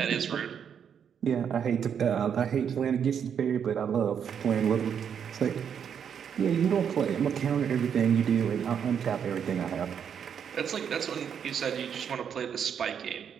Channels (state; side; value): quieter; left; 7.9 dB